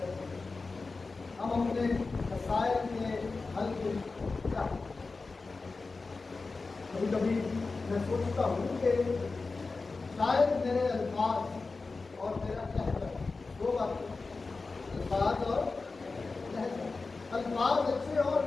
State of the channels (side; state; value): right; quieter; 3.9 dB